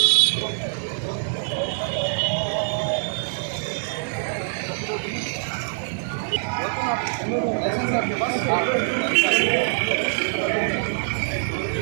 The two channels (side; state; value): left; silent; digital silence